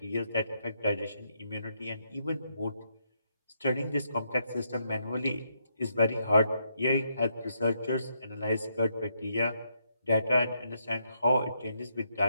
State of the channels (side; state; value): both; inverted; correlation -0.77